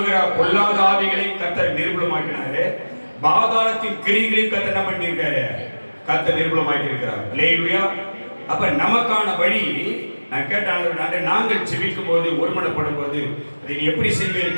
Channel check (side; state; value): both; inverted; correlation -1.00